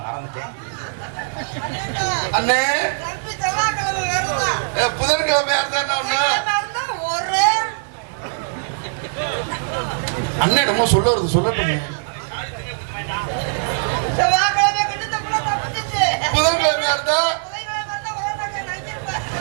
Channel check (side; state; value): left; silent; digital silence